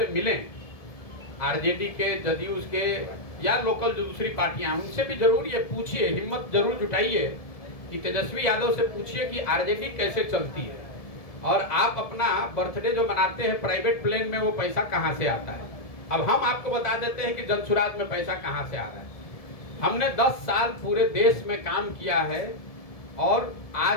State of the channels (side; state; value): right; late; 1.7 ms